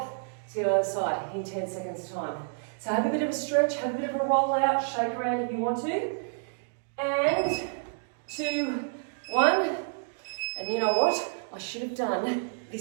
to the other side in 10 seconds time. So have a bit of a stretch, have a bit of a roll out, shake around if you want to. And 2, 1. And you know what? I should have done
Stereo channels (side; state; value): left; silent; digital silence